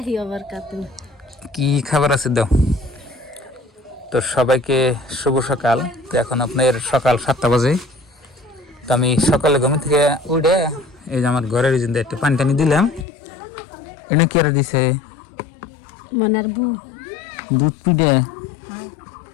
ওয়া বারাকাতুহু। কি খাবার আছে দাও তো। সবাইকে শুভ সকাল। তো এখন আপনার সকাল 7টা বাজে। তো আমি সকালে ঘুম থেকে উঠে এই যে আমার ঘরের জিন্দে একটু পানি টানি দিলাম। এটা কি আর দিছে মনার বু দুধ পিঠে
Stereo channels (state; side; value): drops out; right; at 13.1 s